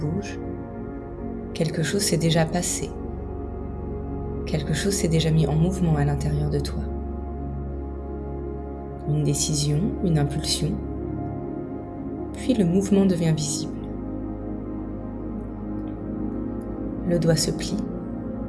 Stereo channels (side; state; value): both; identical; correlation 1.00